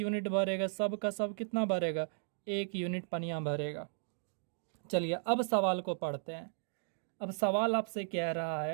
भरेगा, सब का सब कितना भरेगा, 1 यूनिट पनिया भरेगा। चलिए अब सवाल को पढ़ते हैं। अब सवाल आपसे कह रहा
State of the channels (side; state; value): left; silent; digital silence